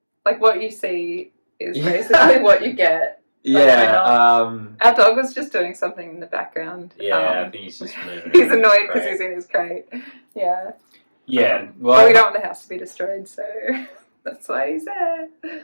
Like what you see is basically what you get. Yeah. Our dog was just doing something in the background. Yeah, I think he's just moving. He's annoyed because he's in his crate. Yeah. Yeah. Well, we don't want the house to be destroyed, so that's why he's there.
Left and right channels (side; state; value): both; inverted; correlation -1.00